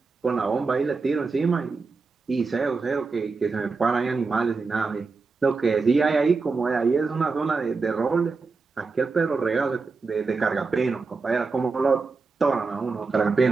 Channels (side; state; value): left; quieter; 4.4 dB